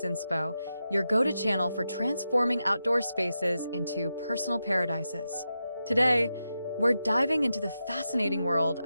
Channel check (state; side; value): inverted; both; correlation -0.89